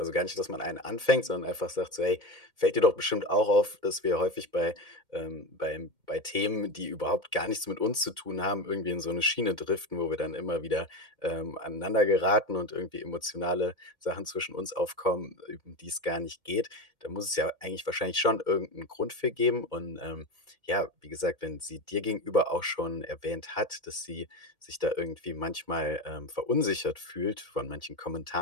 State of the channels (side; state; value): left; late; 2.1 ms